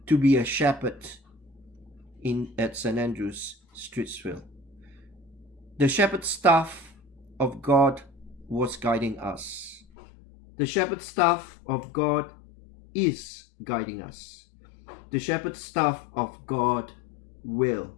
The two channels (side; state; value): right; drops out; at 9.8 s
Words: to be a shepherd at St. Andrew's, Streetsville. The shepherd staff of God was guiding us. The shepherd staff of God is guiding us. The shepherd staff of God will